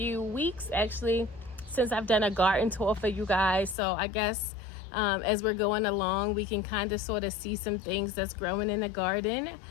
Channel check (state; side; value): drops out; right; at 3.8 s